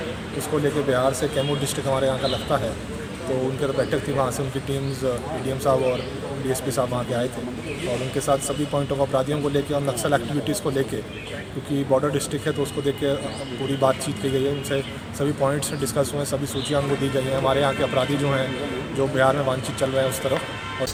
इसको लेकर बिहार से कैमूर डिस्ट्रिक्ट हमारे यहाँ का लगता है, तो उनके तो बैठक थी, वहाँ से उनकी टीम्स डीएम साहब और डीएसपी साहब वहाँ के आए थे और उनके साथ सभी पॉइंट ऑफ अपराधियों को लेके और नक्सल एक्टिविटीज़ को लेके, क्योंकि बॉर्डर डिस्ट्रिक्ट है तो उसको देख के पूरी बातचीत की गई है, उनसे सभी पॉइंट्स डिस्कस हुए, सभी सूचियाँ उनको दी गई हैं, हमारे यहाँ के अपराधी जो हैं जो बिहार में वांछित चल रहे हैं उस तरफ। और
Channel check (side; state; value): both; identical; correlation 1.00